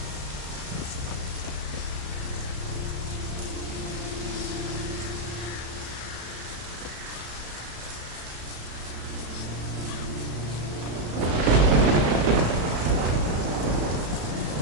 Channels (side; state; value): left; late; 34 ms